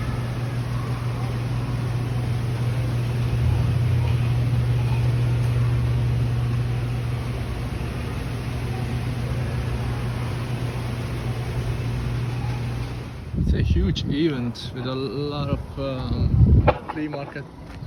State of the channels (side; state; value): both; identical; correlation 1.00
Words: It's a huge event with a lot of flea market